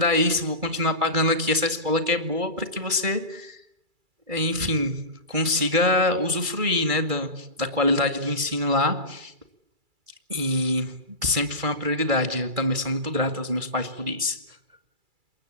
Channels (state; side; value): late; left; 2.3 ms